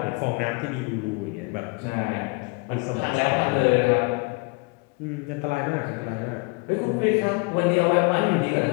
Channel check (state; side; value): quieter; right; 29.9 dB